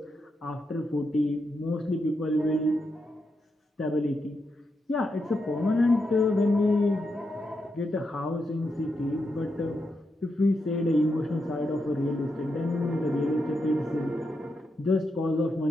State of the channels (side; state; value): both; normal; correlation 0.84